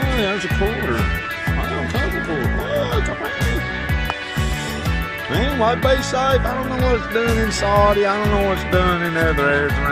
there's a quarter. Oh, take a quarter. Oh, it's a penny. Anyway, be safe. I don't know what it's doing in Saudi. I don't know what it's doing in other areas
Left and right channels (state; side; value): identical; both; correlation 1.00